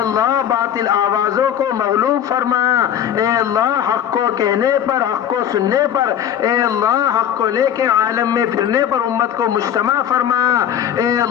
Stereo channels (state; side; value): quieter; right; 9.8 dB